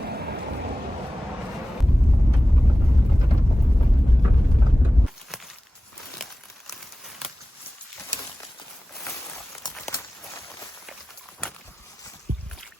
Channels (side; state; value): both; normal; correlation 0.96